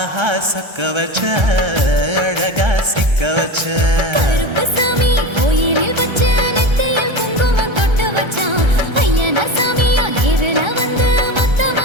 சொக்க வச்ச அழகா சிக்க வச்ச. கருப்பு சாமி கோயிலில் வச்ச நெத்தியில் குங்குமம் தொட்டு வச்சான். ஐயனா சாமியா நேரில வந்து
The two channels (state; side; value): late; left; 1.3 ms